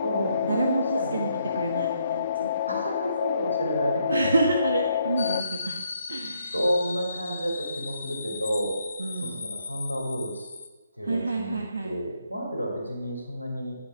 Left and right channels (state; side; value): inverted; both; correlation -0.74